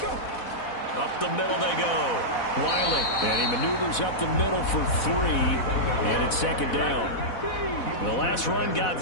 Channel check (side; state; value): right; late; 4.1 ms